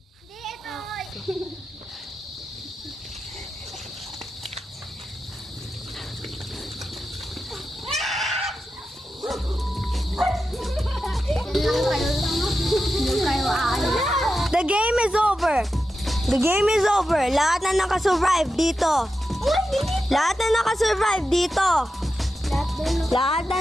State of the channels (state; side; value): normal; both; correlation 0.90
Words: Hindi, ito. The game is over. The game is over. Lahat na nakasurvive dito. Lahat na nakasurvive dito. Lahat